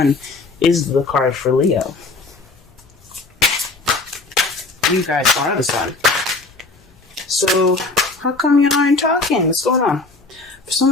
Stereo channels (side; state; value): right; quieter; 3.5 dB